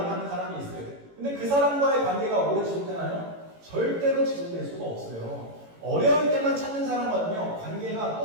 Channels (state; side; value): late; left; 18 ms